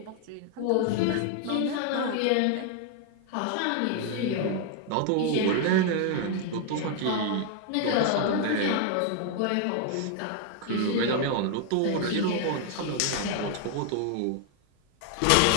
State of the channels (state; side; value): different; both; correlation 0.00